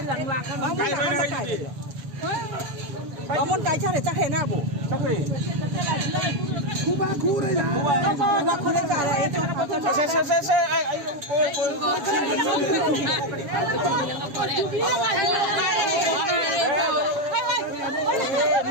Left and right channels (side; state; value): left; late; 7.1 ms